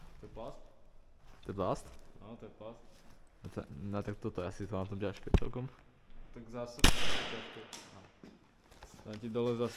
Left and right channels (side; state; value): both; identical; correlation 1.00